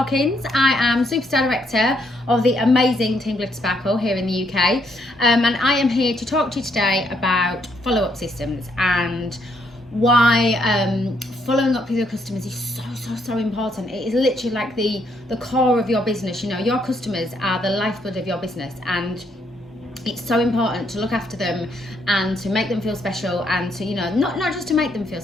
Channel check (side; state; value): both; normal; correlation 0.73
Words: I am Superstar Director of the amazing Team Glitter Sparkle here in the UK. And I am here to talk to you today about follow-up systems and why following up with your customers is so important. It is literally like the core of your business. You know, your customers are the lifeblood of your business, and it's so important to look after them and to make them feel special, and to, you know, not just to make them feel